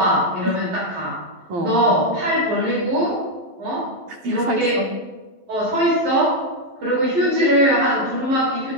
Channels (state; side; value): late; left; 11 ms